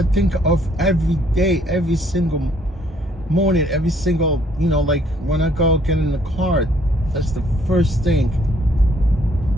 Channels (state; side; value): normal; both; correlation 0.65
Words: think of every day, every single morning, every single, you know, like when I go get in the car, that's the first thing